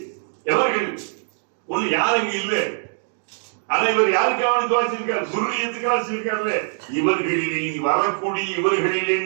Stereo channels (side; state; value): left; silent; digital silence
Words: எவர்கள்? ஒண்ணு யாருங்க இல்ல, ஆனா இவர் யாருக்காக துவாச்சிருக்கார்? சுர்ரியத்துக்காக வச்சிருக்காருல்ல. இவர்களிலே நீ வரக்கூடிய, இவர்களிலே